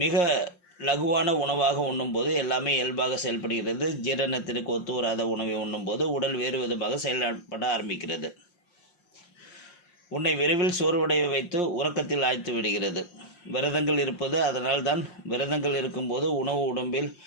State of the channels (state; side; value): late; right; 5.6 ms